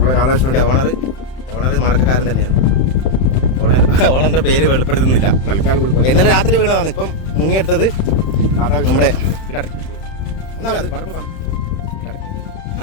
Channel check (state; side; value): late; right; 31 ms